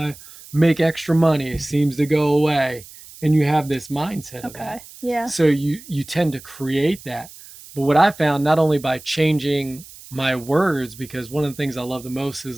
make extra money, it seems to go away. And you have this mindset of that. Okay. Yeah. So you tend to create that. But what I found, not only by changing my words, because one of the things I love the most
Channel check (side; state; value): right; noise; hiss, 19 dB below the sound